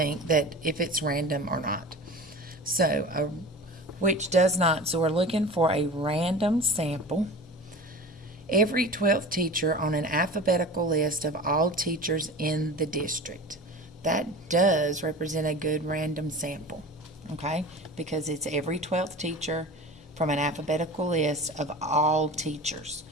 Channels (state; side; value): normal; both; correlation 0.35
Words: that if it's random or not. So, which does not. So, we're looking for a random sample. Every 12th teacher on an alphabetical list of all teachers in the district. That does represent a good random sample, okay? Because it's every 12th teacher from an alphabetical list of all teachers.